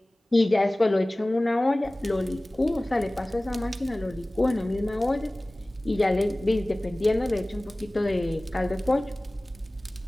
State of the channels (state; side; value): normal; both; correlation 0.98